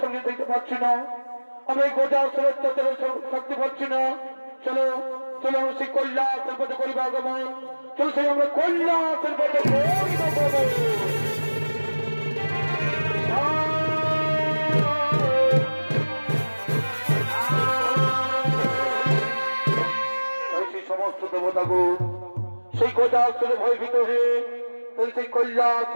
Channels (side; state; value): both; inverted; correlation -1.00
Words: সঙ্গে দেখতে পাচ্ছি না, আমরা এই গোটা অত্যাচারের শক্তি পাচ্ছি না। চলো চলো আমরা সেই কৈলাসের পথে করিব আগমন, চলো সেই আমরা কৈলাসের পথে সমস্ত দেবতাগুণ সেই কৈলাসের ভয়ভীত হয়ে সেই